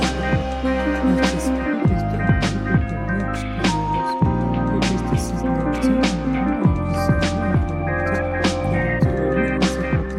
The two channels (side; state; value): both; identical; correlation 1.00